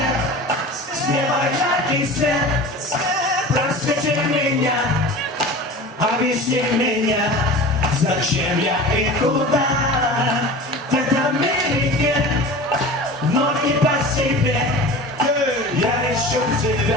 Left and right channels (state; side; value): normal; both; correlation 0.36